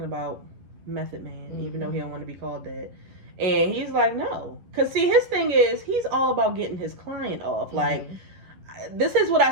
about Method Man, even though he don't want to be called that. And he's like, no. Because, see, his thing is, he's all about getting his client off. Like, this is what I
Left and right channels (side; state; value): left; late; 11 ms